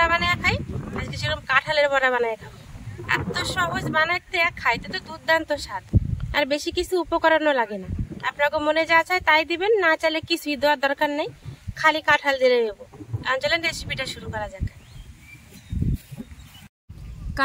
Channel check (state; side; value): identical; both; correlation 1.00